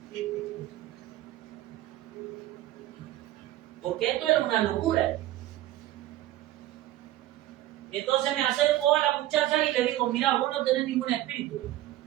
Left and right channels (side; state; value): left; quieter; 14.9 dB